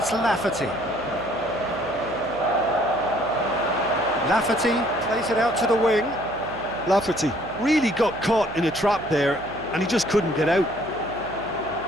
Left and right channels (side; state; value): right; noise; hum, 19 dB below the sound